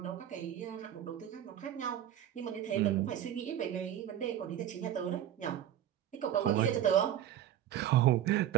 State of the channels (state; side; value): quieter; left; 11.1 dB